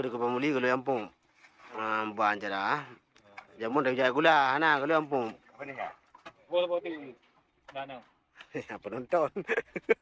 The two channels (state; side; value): identical; both; correlation 1.00